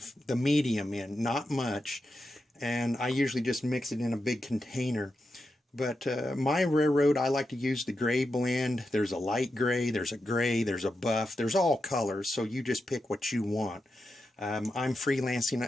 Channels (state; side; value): normal; both; correlation 0.88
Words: the medium in, not much. And I usually just mix it in a big container. But my railroad, I like to use the gray blend. There's a light gray, there's a buff, there's all colors, so you just pick what you want. I'm